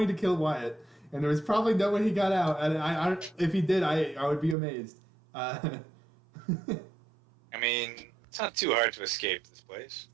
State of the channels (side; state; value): left; drops out; at 4.5 s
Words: to kill Wyatt, and there was probably no way he got out. And if he did, I would be amazed. I mean, it's not too hard to escape this place.